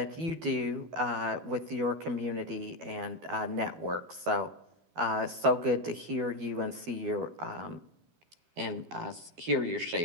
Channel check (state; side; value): late; left; 12 ms